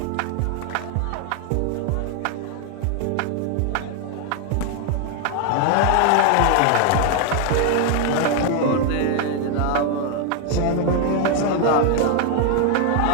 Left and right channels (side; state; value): both; different; correlation 0.00